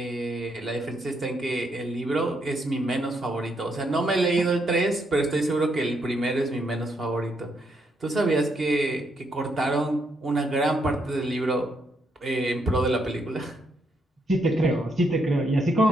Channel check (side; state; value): both; normal; correlation 0.76